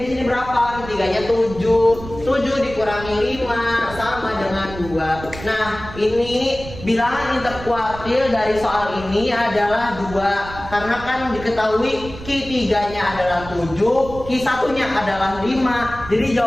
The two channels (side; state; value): right; noise; rumble, 14 dB below the sound